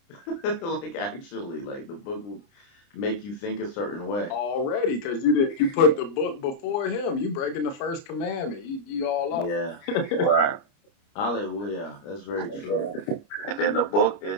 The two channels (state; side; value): late; right; 29 ms